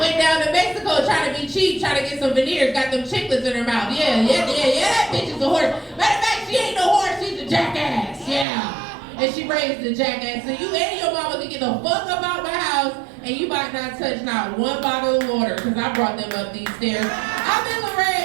down to Mexico trying to be cheap, trying to get some veneers, got them chiclets in her mouth. Yeah, that bitch is a horse. Matter of fact, she ain't no horse, she's a jackass. Yeah. And she raised a jackass, so you and your mama can get the fuck up out my house, and you might not touch not one bottle of water, because I brought them up these stairs. I've been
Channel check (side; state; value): left; drops out; at 8.5 s